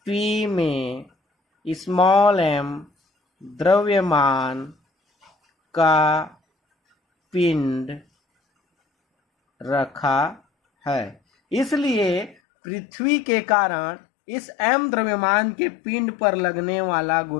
P में स्मॉल m द्रव्यमान का पिंड रखा है। इसलिए पृथ्वी के कारण इस m द्रव्यमान के पिंड पर लगने वाला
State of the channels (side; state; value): right; drops out; at 12.4 s